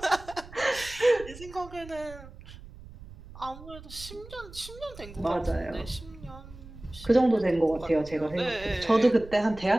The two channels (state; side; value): noise; right; rumble, 17 dB below the sound